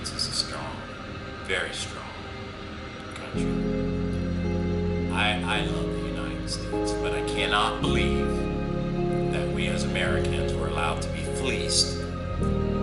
is a strong, very strong country. I love the United States, but I cannot believe that we as Americans were allowed to be fleeced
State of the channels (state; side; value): identical; both; correlation 1.00